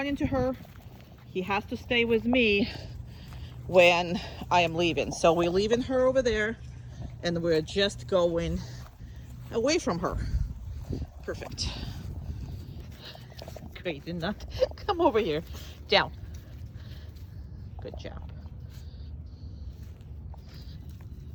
to her. He has to stay with me when I am leaving. So we're leaving her over there and we're just going away from her. Perfect. Great, did not come over here. Down. Good job.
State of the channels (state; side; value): identical; both; correlation 1.00